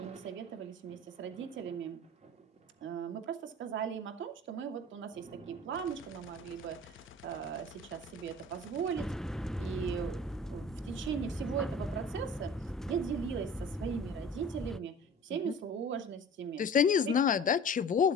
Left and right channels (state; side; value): normal; both; correlation 0.42